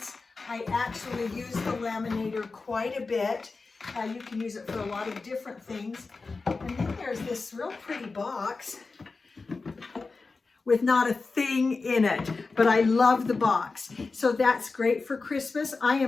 I actually use the laminator quite a bit. You can use it for a lot of different things. And then there's this real pretty box with not a thing in it, but I love the box. So that's great for Christmas. I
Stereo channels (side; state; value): right; quieter; 4.1 dB